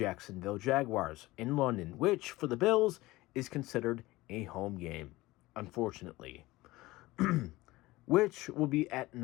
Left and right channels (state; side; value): quieter; right; 19.2 dB